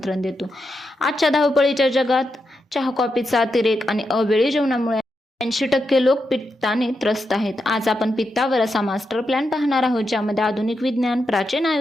देतो. आजच्या धावपळीच्या जगात चहा कॉफीचा अतिरेक आणि अवेळी जेवणामुळे 80% लोक पित्ताने त्रस्त आहेत. आज आपण पित्तावर असा मास्टर प्लॅन पाहणार आहोत, ज्यामध्ये आधुनिक विज्ञान, प्राचीन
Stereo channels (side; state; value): both; normal; correlation 0.86